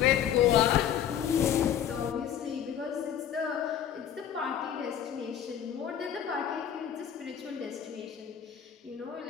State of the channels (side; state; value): right; quieter; 9.5 dB